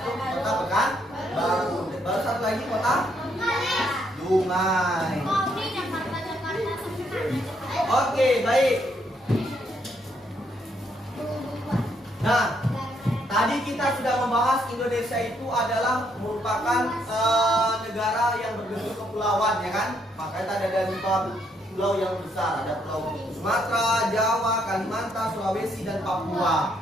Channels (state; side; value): normal; both; correlation 0.73